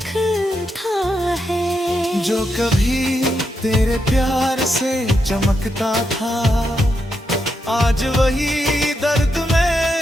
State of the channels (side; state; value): both; normal; correlation 0.83